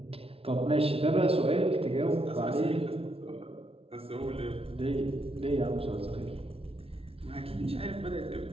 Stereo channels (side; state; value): left; late; 0.28 ms